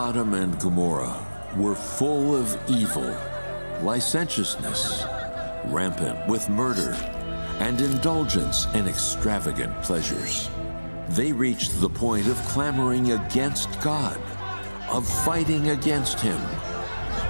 and Gomorrah were full of evil, licentiousness, rampant with murder, and indulgence in extravagant pleasures. They reached the point of clamoring against God, of fighting against him,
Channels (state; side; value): inverted; both; correlation -1.00